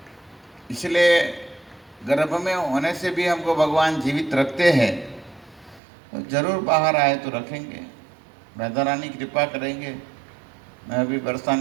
इसलिए गर्भ में होने से भी हमको भगवान जीवित रखते हैं, तो जरूर बाहर आए तो रखेंगे, राधा रानी कृपा करेंगे मैं अभी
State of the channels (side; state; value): left; drops out; at 5.8 s